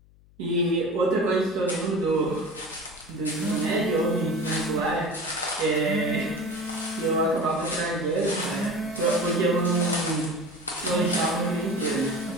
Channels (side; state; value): left; noise; hum, 27 dB below the sound